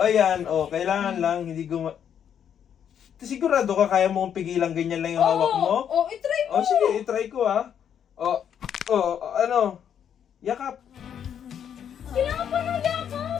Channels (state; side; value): quieter; right; 8.7 dB